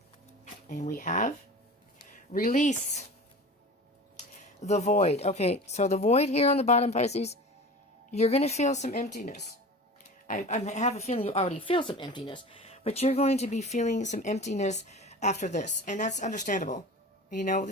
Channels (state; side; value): normal; both; correlation 0.36